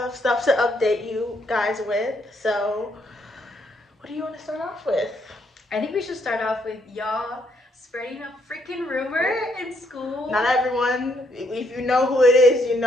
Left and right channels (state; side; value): normal; both; correlation 0.72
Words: stuff to update you guys with. So, what do you want to start off with? I think we should start off with y'all spreading a freaking rumor in school. Not everyone, if you know who it is, you